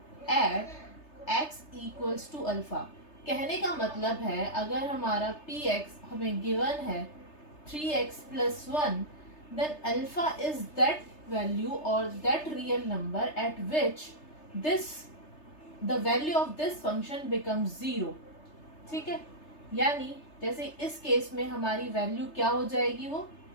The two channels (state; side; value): late; right; 3.3 ms